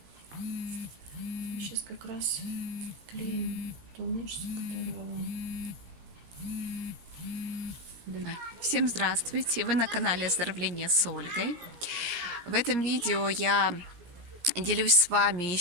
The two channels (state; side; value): late; left; 17 ms